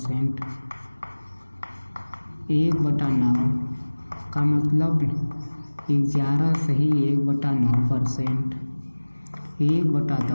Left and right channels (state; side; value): inverted; both; correlation -1.00